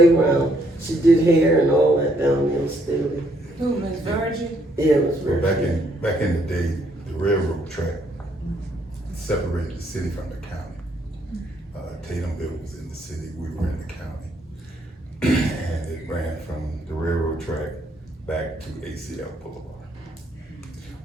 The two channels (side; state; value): both; normal; correlation 0.70